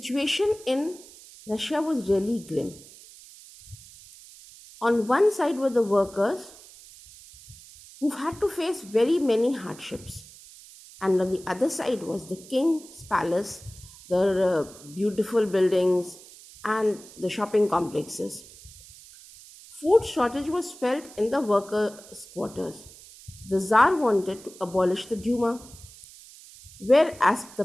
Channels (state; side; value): noise; right; hiss, 20 dB below the sound